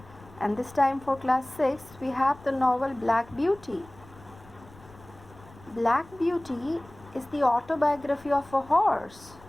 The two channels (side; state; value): left; noise; rumble, 23 dB below the sound